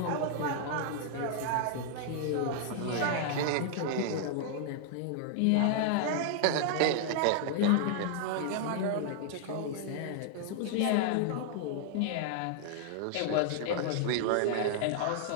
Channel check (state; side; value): different; both; correlation -0.01